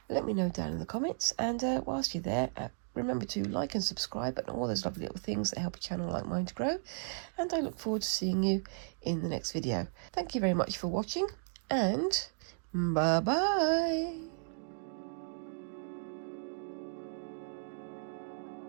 Let me know down in the comments, and whilst you're there, remember to like and subscribe and all those lovely little things that help a channel like mine to grow, and I look forward to seeing you in the next video. Thank you very much for watching, and bye bye.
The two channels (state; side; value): silent; left; digital silence